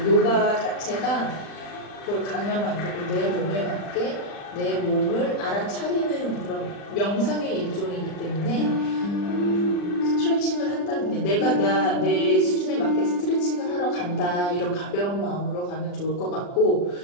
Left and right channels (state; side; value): late; right; 40 ms